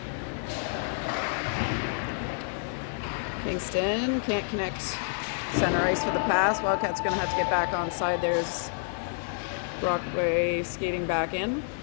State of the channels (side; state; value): right; silent; digital silence